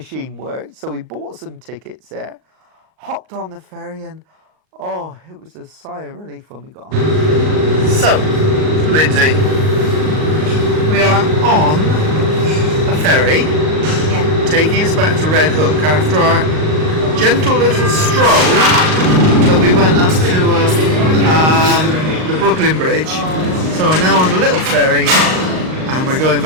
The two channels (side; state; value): left; late; 38 ms